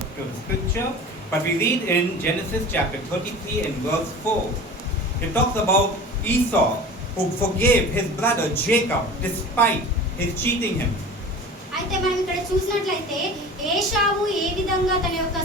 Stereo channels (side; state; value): both; normal; correlation 0.37